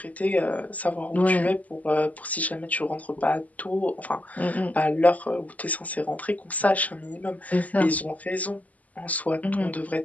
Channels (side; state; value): right; late; 0.075 ms